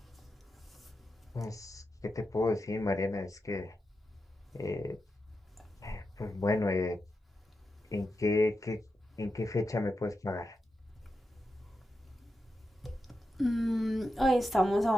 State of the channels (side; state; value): both; normal; correlation 0.89